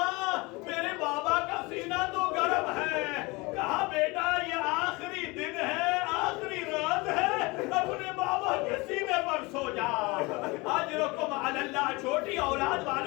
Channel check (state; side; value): quieter; right; 24.7 dB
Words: میرے بابا کا سینہ تو گرم ہے۔ کہا بیٹا یہ آخری دن ہے، آخری رات ہے، اپنے بابا کے سینے پر سو جا۔ اجرکم علی اللہ۔ چھوٹی اولاد